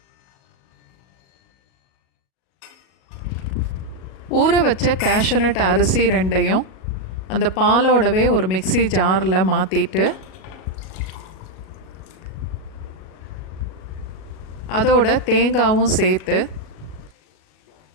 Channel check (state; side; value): late; right; 37 ms